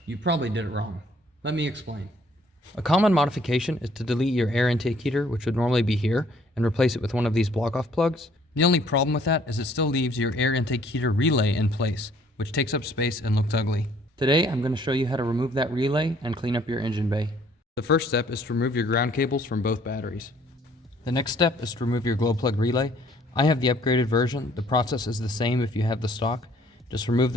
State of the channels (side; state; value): both; normal; correlation 0.61